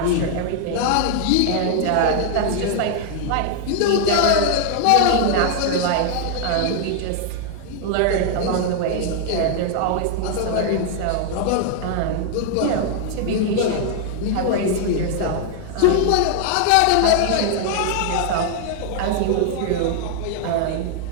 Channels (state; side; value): different; both; correlation 0.00